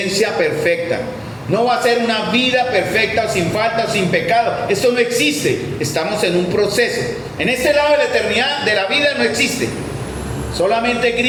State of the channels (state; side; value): identical; both; correlation 1.00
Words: perfecta, no va a ser una vida perfecta o sin falta o sin pecado. Esto no existe, estamos en un proceso. En este lado de la eternidad de la vida no existe. Solamente